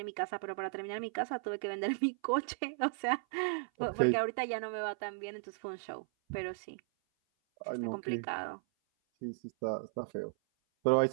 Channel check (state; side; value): silent; left; 54 dB below the other